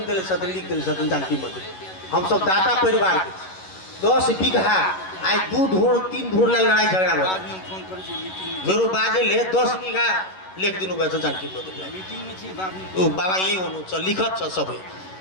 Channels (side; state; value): right; late; 11 ms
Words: दिले छथिन, लिख दिले छथिन जानकी मंदिर। हम सब दाता परिवार के 10 बीघा आई 2 धूर 3 धूर ला लड़ाई झगड़ा हो मेरो बाजे ले 10 बीघा लेख दिनु भयो जानकी मंदिर। ओ बाबा यही हुनु छ, लिखत छ सबै